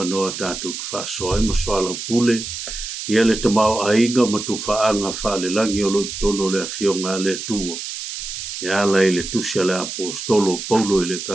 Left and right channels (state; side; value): noise; right; hiss, 7 dB below the sound